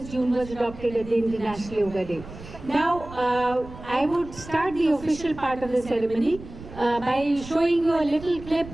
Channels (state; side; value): noise; right; rumble, 15 dB below the sound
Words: June was adopted as the International Yoga Day. Now, I would start the official part of the ceremony by showing you a little clip